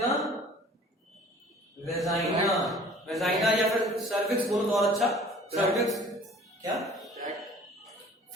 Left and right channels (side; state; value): both; normal; correlation 0.49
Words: वेजाइना, वेजाइना या फिर सर्विक्स बोलो तो और अच्छा, सर्विक्स क्या,